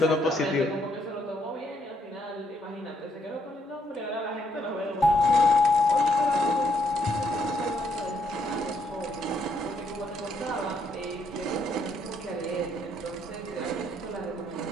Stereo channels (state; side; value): normal; both; correlation 0.73